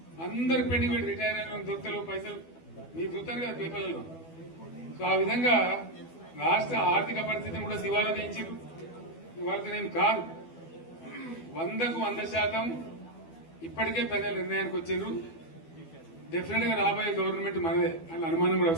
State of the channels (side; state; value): right; late; 12 ms